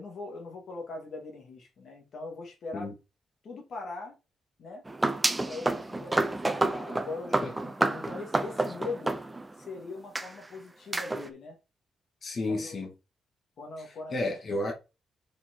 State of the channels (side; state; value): both; normal; correlation 0.90